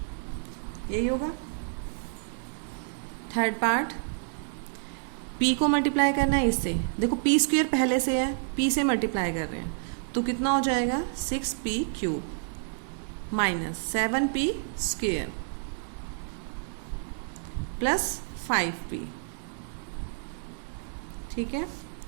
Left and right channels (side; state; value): left; silent; digital silence